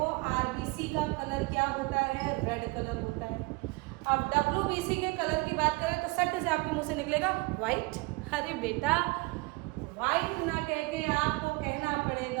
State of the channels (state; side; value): quieter; left; 25.1 dB